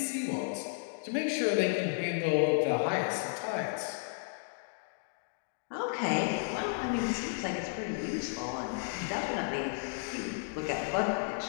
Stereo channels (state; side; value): silent; right; digital silence